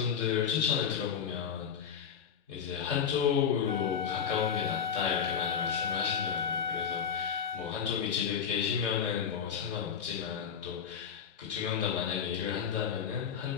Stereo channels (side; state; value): right; quieter; 7.5 dB